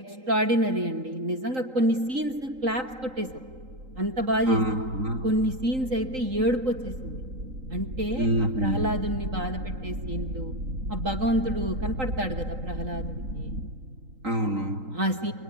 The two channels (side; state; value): left; late; 3.8 ms